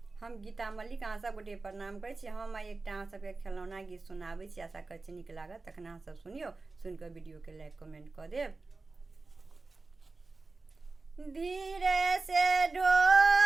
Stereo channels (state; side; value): quieter; left; 3.7 dB